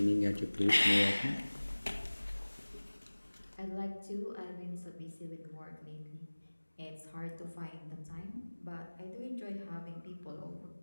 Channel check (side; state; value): both; inverted; correlation -1.00